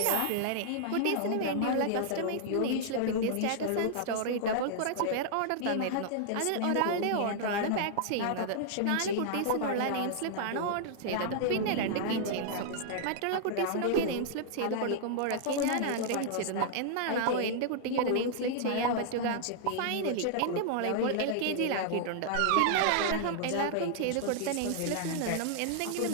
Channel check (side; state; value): both; different; correlation -0.01